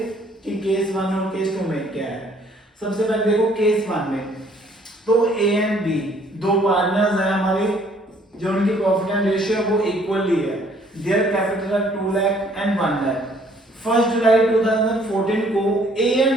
कि केस 1 और केस 2 में क्या है। सबसे पहले देखो केस 1 में, तो ए एंड बी दो पार्टनर्स हैं हमारे, जो उनकी प्रॉफिट एंड रेशियो है वो इक्वली है। Their capital are 2 lakh and 1 lakh. 1 July 2014 को A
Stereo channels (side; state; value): both; normal; correlation 0.61